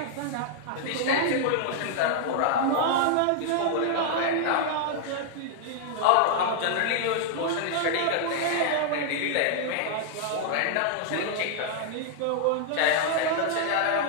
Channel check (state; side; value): different; both; correlation -0.01